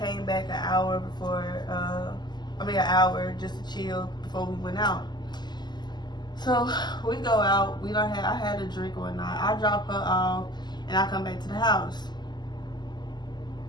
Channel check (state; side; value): late; right; 0.21 ms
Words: back an hour just to chill before we went out. So we go out. I had a drink one night. I drop her off, and I come back to the house.